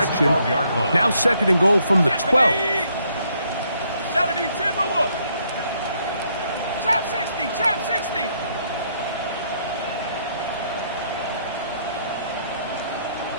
Now second and goal from the 12. 70 Timberwolf. Trap 60, trap 60.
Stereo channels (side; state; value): both; inverted; correlation -0.70